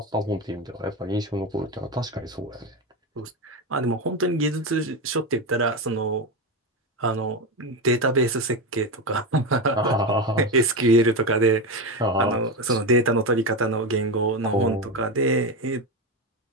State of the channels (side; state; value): both; normal; correlation 0.16